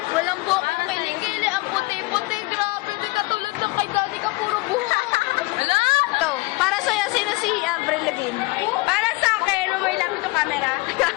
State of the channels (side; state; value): right; quieter; 23.7 dB